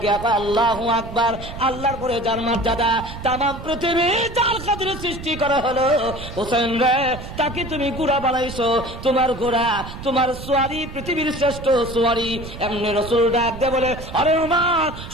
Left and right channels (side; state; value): right; noise; rumble, 11 dB below the sound